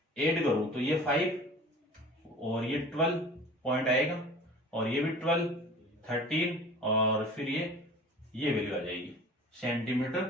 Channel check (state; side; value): normal; both; correlation 0.42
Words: ऐड करूं तो ये 5 और ये 12 पॉइंट आएगा और ये भी 12, 13 और फिर ये वैल्यू आ जाएगी,